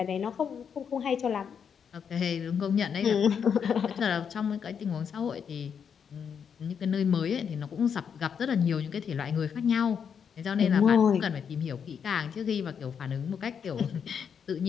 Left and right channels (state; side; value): quieter; right; 7.2 dB